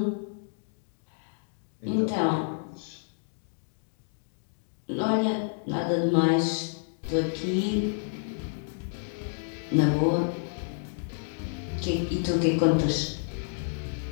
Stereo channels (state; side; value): silent; right; digital silence